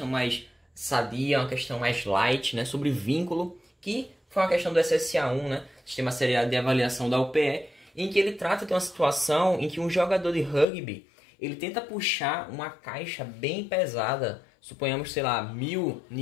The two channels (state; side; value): drops out; right; at 10.7 s